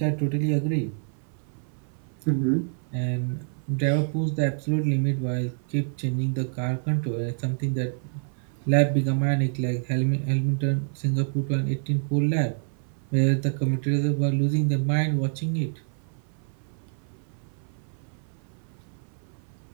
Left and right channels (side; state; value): left; silent; 56 dB below the other